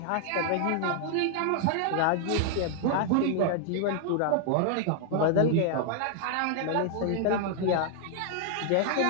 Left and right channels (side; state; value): both; different; correlation 0.00